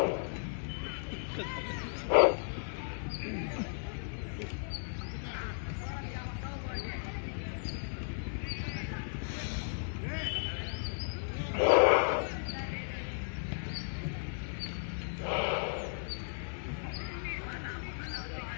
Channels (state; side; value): silent; right; 54 dB below the other